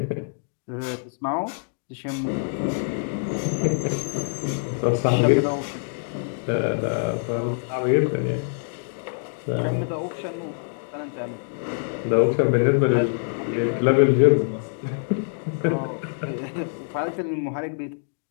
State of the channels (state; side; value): silent; right; digital silence